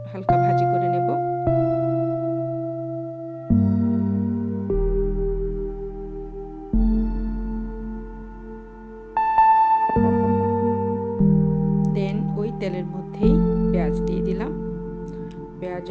হালকা ভাজি করে নেব। ওই তেলের মধ্যেই পেঁয়াজ দিয়ে দিলাম।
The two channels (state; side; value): identical; both; correlation 1.00